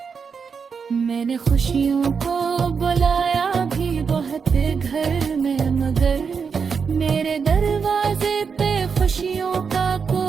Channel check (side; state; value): left; quieter; 5.9 dB